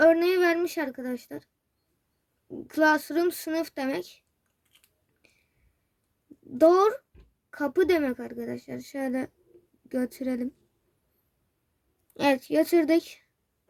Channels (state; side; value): identical; both; correlation 1.00